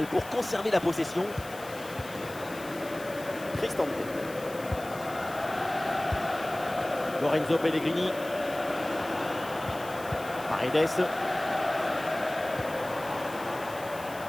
pour conserver la possession. Cristante. Lorenzo Pellegrini. Paredes.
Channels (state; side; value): noise; left; hiss, 17 dB below the sound